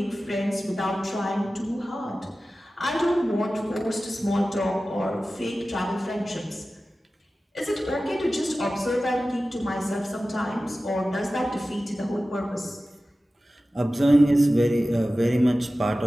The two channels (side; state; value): both; normal; correlation 0.95